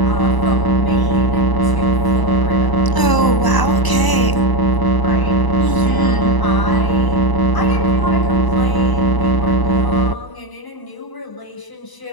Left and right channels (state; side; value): late; right; 1.0 ms